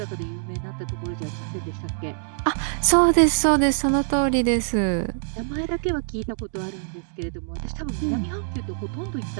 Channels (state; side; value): silent; left; digital silence